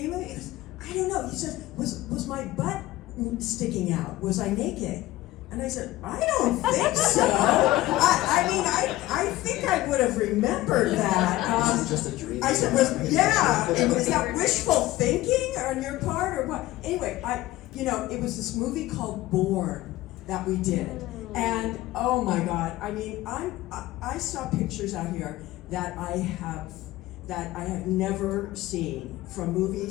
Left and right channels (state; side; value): quieter; right; 16.8 dB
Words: of it?" He goes, "I don't know." He says, "Was my butt sticking out? Was I naked?" And I said, "I don't think so." I think I would have remembered that. This is just a dream. I said, "Was that wishful thinking on your part or what?" Anyway, it was this movie called Born that we did, and oh my God, I mean, I saw pictures out here that I have never seen from